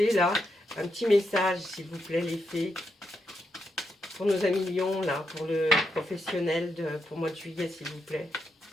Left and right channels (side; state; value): both; normal; correlation 0.82